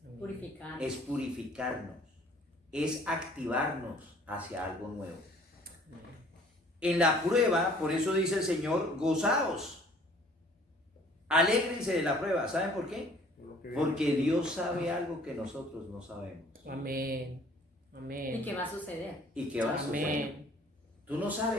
Purificar. es purificarnos, es activarnos hacia algo nuevo. En la prueba, por eso dice el Señor, gozaos, alégrense de la prueba. ¿Saben por qué? Porque Dios sabe algo que nosotros no sabemos. Amén. Amén. ¿Y qué va a suceder? ¿Y qué va a suceder? Amén. Tú no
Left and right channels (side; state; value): both; normal; correlation 0.55